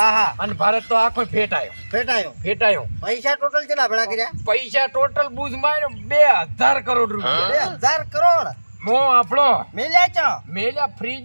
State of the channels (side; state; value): both; inverted; correlation -1.00